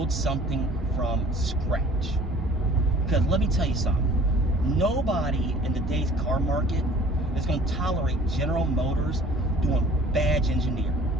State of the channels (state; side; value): normal; both; correlation 0.50